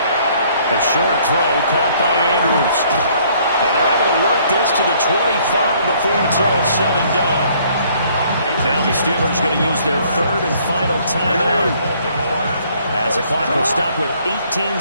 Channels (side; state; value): both; inverted; correlation -0.62